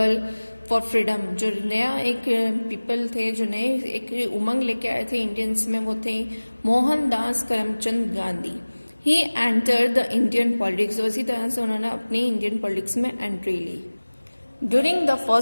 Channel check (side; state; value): both; inverted; correlation -1.00